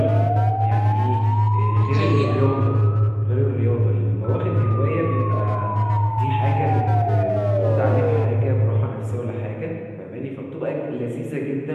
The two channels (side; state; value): both; identical; correlation 1.00